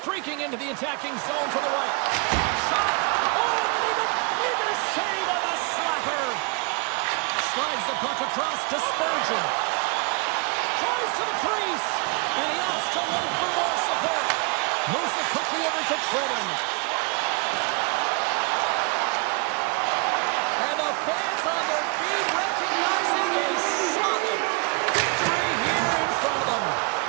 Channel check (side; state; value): left; quieter; 32.7 dB